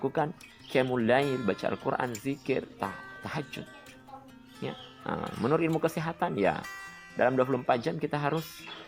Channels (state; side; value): identical; both; correlation 1.00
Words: qiyamul lail, baca Al-Quran, zikir, tahajud. Ya, menurut ilmu kesehatan, ya dalam 24 jam kita harus